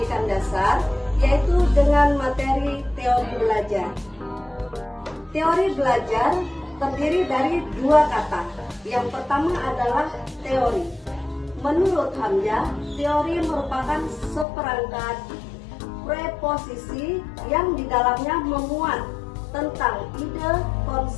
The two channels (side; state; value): right; drops out; at 14.5 s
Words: dasar, yaitu dengan materi teori belajar. Teori belajar terdiri dari dua kata. Yang pertama adalah teori. Menurut Hamzah, teori merupakan seperangkat preposisi yang di dalamnya memuat tentang ide,